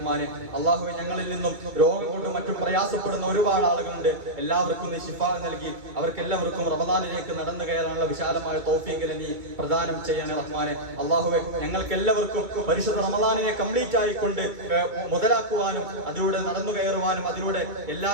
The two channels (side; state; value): left; late; 2.3 ms